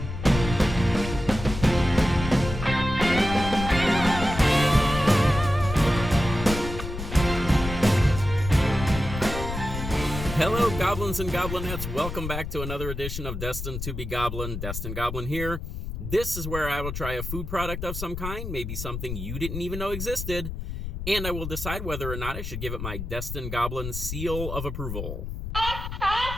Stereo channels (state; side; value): noise; left; rumble, 6 dB below the sound